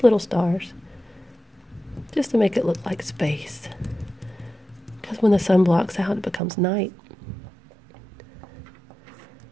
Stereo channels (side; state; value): left; drops out; at 6.4 s